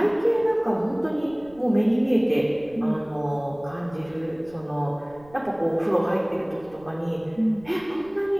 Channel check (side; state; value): right; noise; rumble, 25 dB below the sound